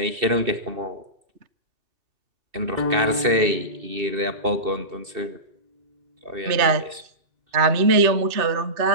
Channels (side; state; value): left; late; 2.7 ms